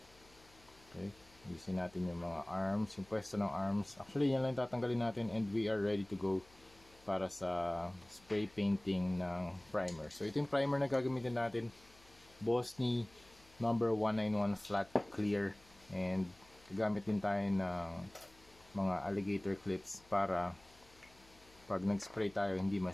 Okay, usin natin yung mga arms, yung pwesto ng arms. Actually, yan lang tatanggalin natin and we are ready to go para sa spray painting ng primer. So ito yung primer na gagamitin natin. Bosny number 191 flat clear, and gagamit din tayo ng mga alligator clips para pag nag-spray tayo hindi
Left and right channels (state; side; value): noise; left; hum, 27 dB below the sound